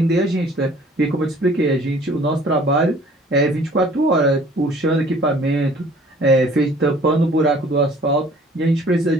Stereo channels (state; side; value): normal; both; correlation 0.53